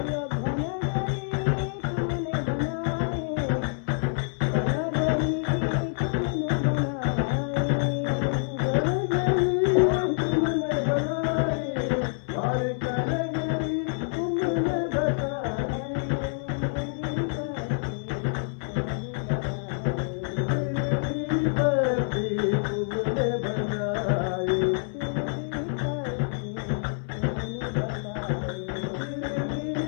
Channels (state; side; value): silent; right; 60 dB below the other